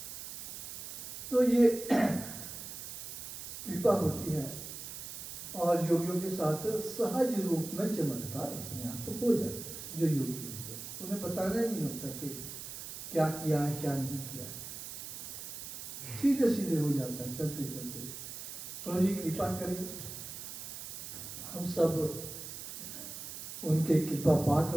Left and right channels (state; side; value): noise; right; hiss, 9 dB below the sound